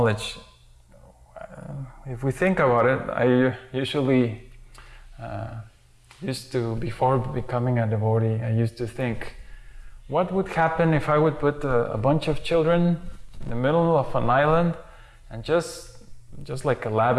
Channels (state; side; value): identical; both; correlation 1.00